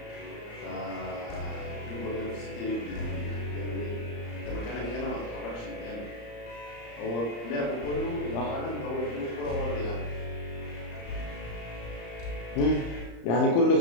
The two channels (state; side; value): late; right; 34 ms